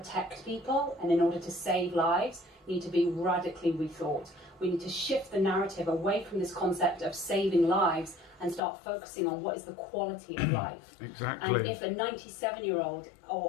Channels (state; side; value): drops out; right; at 8.6 s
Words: people and in order to save lives need to be radically rethought. We need to shift the narrative away from this concept of saving lives and start focusing on what is the quality of life. Exactly. And if a 97-year-old